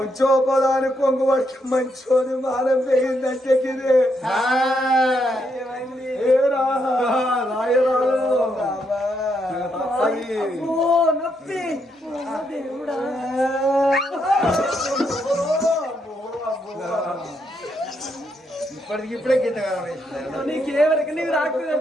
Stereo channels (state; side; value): normal; both; correlation 0.78